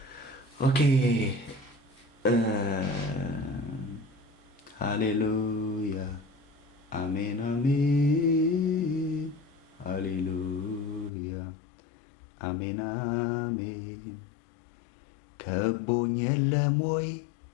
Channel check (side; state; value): right; drops out; at 11.1 s